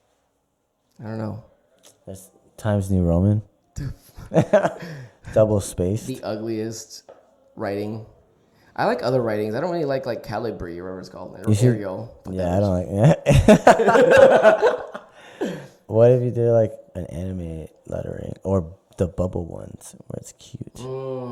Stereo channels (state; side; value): identical; both; correlation 1.00